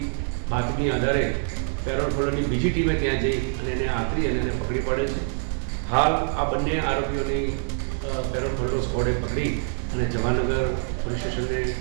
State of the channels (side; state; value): left; silent; 62 dB below the other